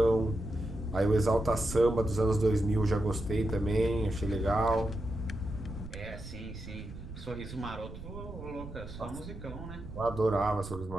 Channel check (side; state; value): right; noise; rumble, 12 dB below the sound